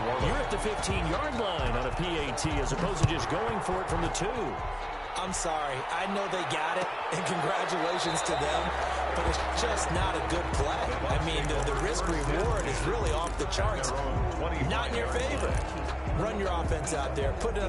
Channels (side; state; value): both; identical; correlation 1.00